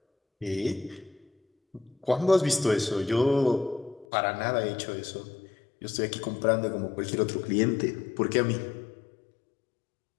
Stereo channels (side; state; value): right; drops out; at 4.0 s